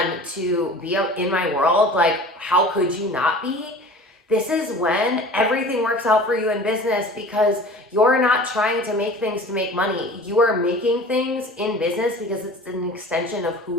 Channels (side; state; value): both; normal; correlation 0.41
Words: to be in my world. Like, how could you not be? This is when everything works out for you in business, because you're not trying to make things to make money. You are making things in business because it's an extension of